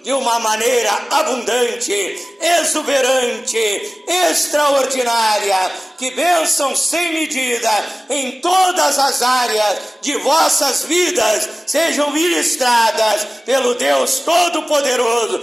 de uma maneira abundante, exuberante, extraordinária. Que bênção sem medida em todas as áreas de vossas vidas sejam ministradas pelo Deus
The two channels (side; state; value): both; normal; correlation 0.97